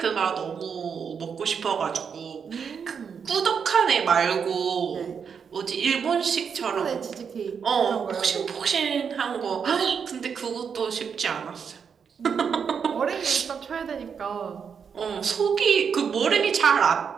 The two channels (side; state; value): left; quieter; 6.7 dB